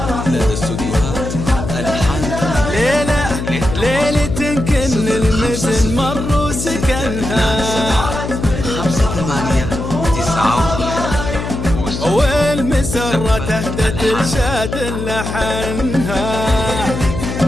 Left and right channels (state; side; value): noise; left; hum, 5 dB below the sound